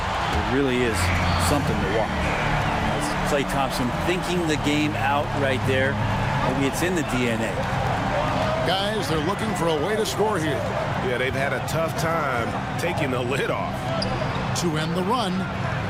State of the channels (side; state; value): both; identical; correlation 1.00